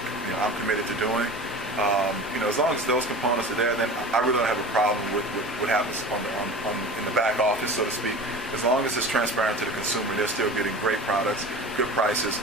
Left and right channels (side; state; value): both; normal; correlation 0.35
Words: committed to doing. As long as those components are there, then I really don't have a problem with what happens in the back office, so to speak. As long as it's transparent to the consumer, they're still getting great products, good prices,